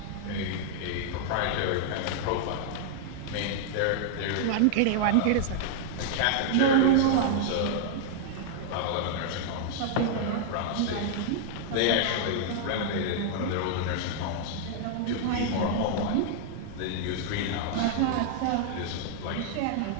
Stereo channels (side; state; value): both; different; correlation -0.01